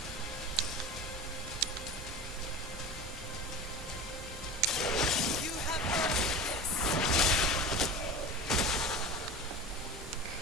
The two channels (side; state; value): both; normal; correlation 0.32